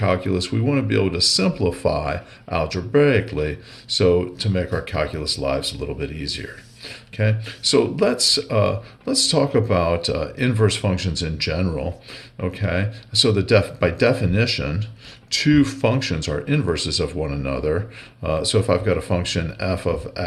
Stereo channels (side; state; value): both; identical; correlation 1.00